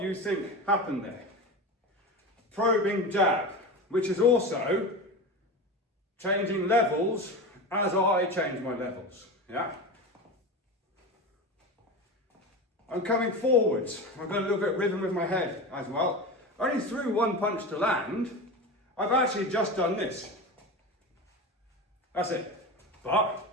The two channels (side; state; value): both; normal; correlation 0.25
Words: you think happened there. Probing jab, which is also changing levels as I change my levels. Yeah. I'm coming forwards. I've got a little bit of rhythm with my head as well. I only threw one punch to land. I've actually just done this. That's it. But